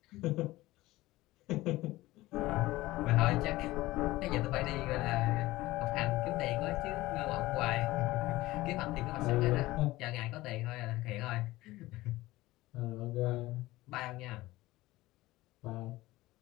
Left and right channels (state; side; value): quieter; right; 18.2 dB